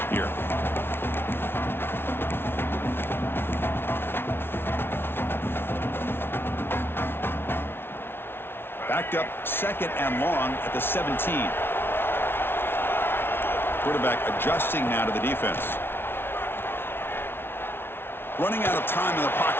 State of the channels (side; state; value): right; late; 0.11 ms